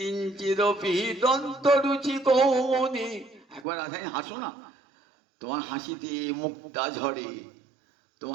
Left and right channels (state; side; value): drops out; left; at 3.7 s